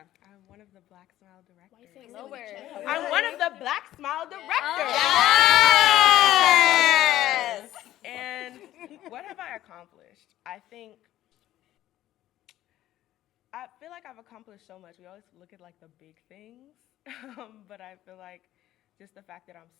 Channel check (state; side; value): quieter; right; 13.8 dB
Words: I'm one of the Black Smile directors. Why you say lower? I'm one of the Black Smile directors. Yes! And what have I accomplished? I feel like I've accomplished so much. We always look at like the big things, but I feel like just the fact that I'm